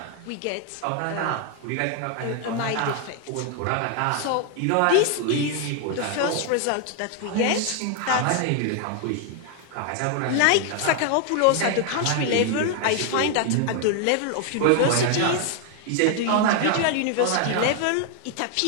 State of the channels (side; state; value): both; different; correlation 0.00